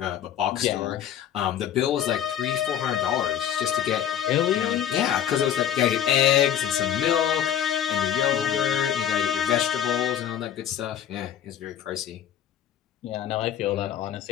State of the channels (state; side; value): quieter; right; 10.1 dB